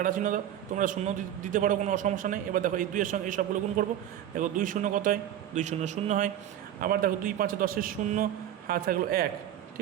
চিহ্ন দাও, তোমরা শূন্য দিতে পারো, কোনো সমস্যা নেই। এবার দেখো এই 2 এর সঙ্গে এই সবগুলো গুণ করবো। দেখো 2 0 কত হয়? 2 0 0 হয়। আবার দেখো 2 5 10 0, হাত থাকলো 1,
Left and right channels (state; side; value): quieter; left; 11.3 dB